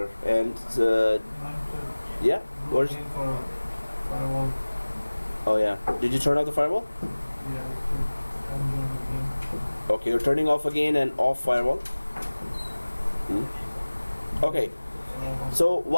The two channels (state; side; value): inverted; both; correlation -1.00